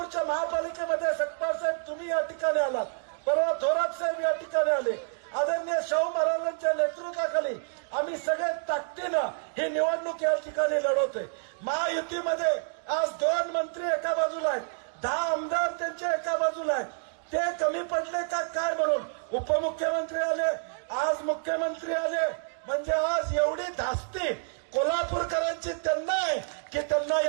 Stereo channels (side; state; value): left; silent; 59 dB below the other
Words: महापालिकेमध्ये सकपाल साहेब तुम्ही या ठिकाणी आलात, परवा थोरात साहेब या ठिकाणी आले. आदरणीय शाहू महाराजांच्या नेतृत्वाखाली आम्ही सगळे ताकदीनं ही निवडणूक या ठिकाणी लढवतोय. महायुतीमध्ये आज 2 मंत्री एका बाजूला आहेत, 10 आमदार त्यांच्या एका बाजूला आहेत. ते कमी पडले का काय म्हणून उपमुख्यमंत्री आले, आज मुख्यमंत्री आले. म्हणजे आज एवढी धास्ती कोल्हापूरकरांची त्यांना आहे की त्यांना